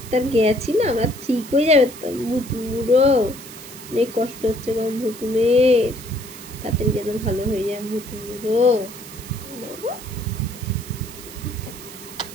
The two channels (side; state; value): right; noise; hiss, 15 dB below the sound